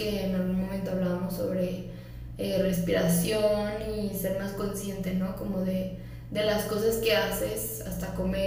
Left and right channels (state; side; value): identical; both; correlation 1.00